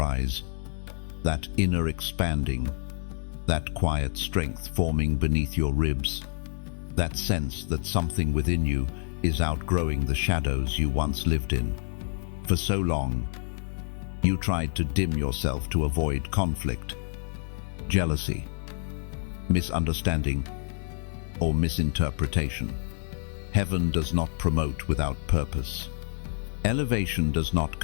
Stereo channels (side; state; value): right; silent; digital silence